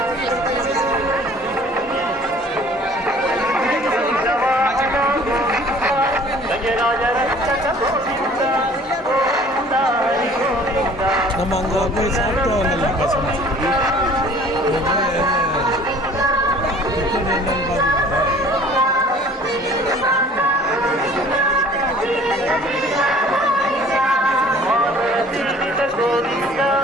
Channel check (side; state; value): both; normal; correlation 0.51